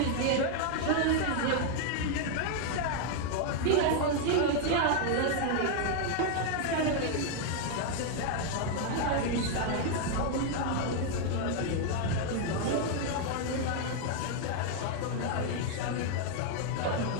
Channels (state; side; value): different; both; correlation 0.00